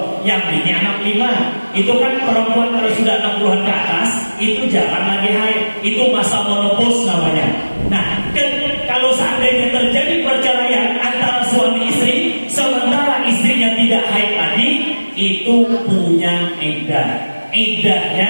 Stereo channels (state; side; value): inverted; both; correlation -1.00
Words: yang bini anak 5. Itu kan perempuan kalau sudah 60-an ke atas, itu jarang lagi haid. Itu masa menopause namanya. Nah, kalau seandainya terjadi perceraian antara suami istri, sementara istrinya tidak haid lagi, itu punya iddah.